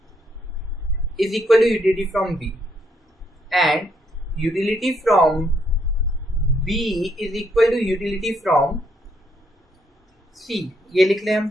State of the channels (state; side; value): normal; both; correlation 0.74